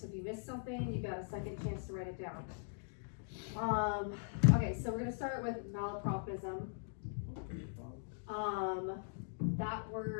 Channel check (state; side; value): silent; right; digital silence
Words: if you missed something, you got a second chance to write it down. Okay, so we're gonna start with malapropism. That